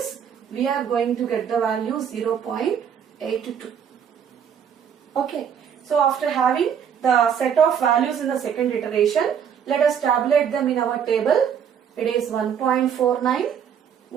we are going to get the value 0.82. Okay, so after having the set of values in the second iteration, let us tabulate them in our table. It is 1.49,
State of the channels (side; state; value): left; quieter; 8.0 dB